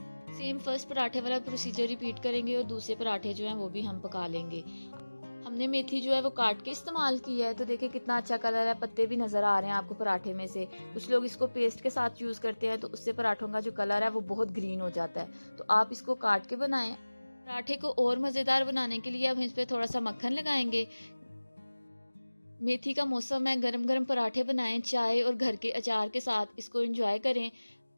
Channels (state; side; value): inverted; both; correlation -1.00